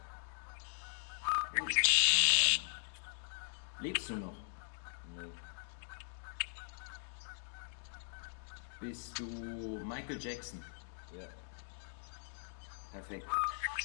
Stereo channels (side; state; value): right; silent; digital silence